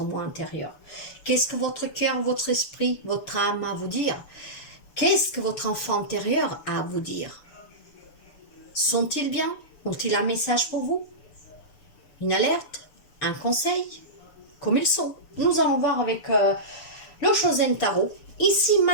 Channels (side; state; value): right; late; 6.9 ms